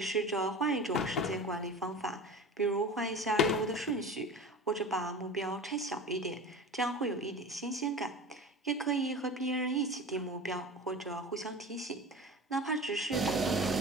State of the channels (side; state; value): both; normal; correlation 0.33